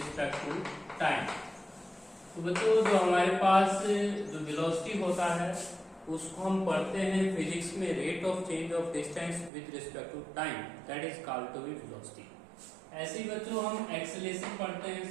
टू टाइम। तो बच्चों जो हमारे पास जो वेलोसिटी होता है उसको हम पढ़ते हैं फिजिक्स में rate of change of distance with respect to time, that is called to be velocity. ऐसे ही बच्चों हम एक्सेलरेशन पढ़ते हैं,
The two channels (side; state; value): left; drops out; at 9.5 s